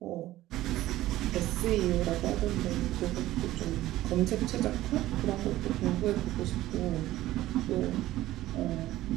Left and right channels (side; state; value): left; quieter; 15.5 dB